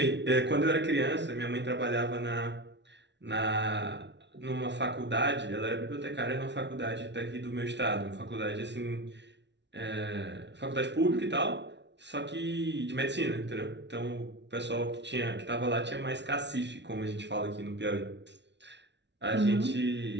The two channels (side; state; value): left; late; 0.51 ms